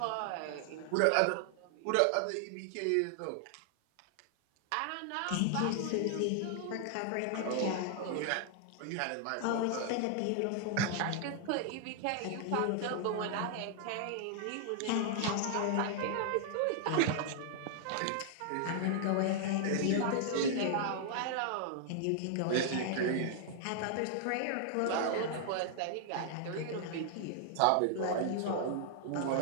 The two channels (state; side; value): different; both; correlation -0.01